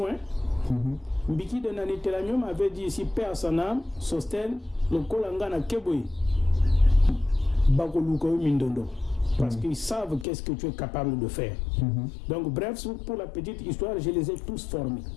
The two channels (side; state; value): right; drops out; at 10.2 s